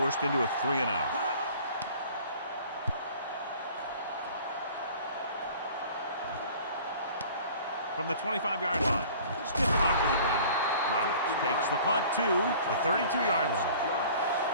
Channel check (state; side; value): inverted; both; correlation -0.48